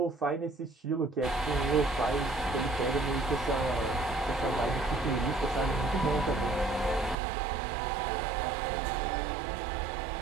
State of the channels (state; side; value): drops out; left; at 7.2 s